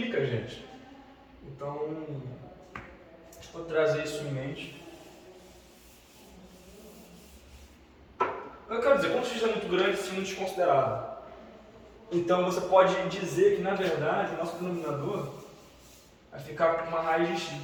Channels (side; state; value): both; identical; correlation 1.00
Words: a gente. Então, deixa eu trazer isso em mente. Eu quero dizer, quando o x é muito grande, isso é muito desconsiderado. Então, você pode dizer que, na verdade, o nosso denominador vai ficar com uma raiz de x.